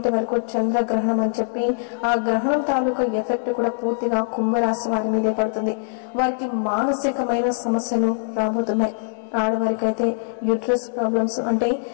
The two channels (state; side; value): silent; right; digital silence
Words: వరకు చంద్రగ్రహణం అని చెప్పి ఆ గ్రహణం తాలూకా ఎఫెక్ట్ కూడా పూర్తిగా కుంభరాశి వారి మీదే పడుతుంది. వారికి మానసికమైన సమస్యలు రాబోతున్నాయి. ఆడవారికి అయితే యూట్రస్ ప్రాబ్లమ్స్ అంటే